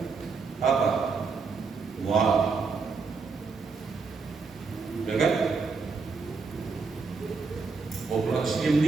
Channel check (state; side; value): quieter; left; 4.8 dB